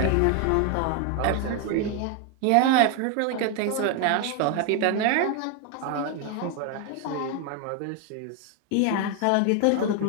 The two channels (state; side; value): different; both; correlation 0.01